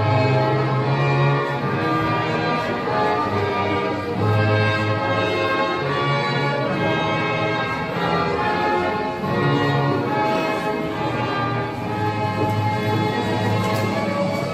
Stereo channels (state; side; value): identical; both; correlation 1.00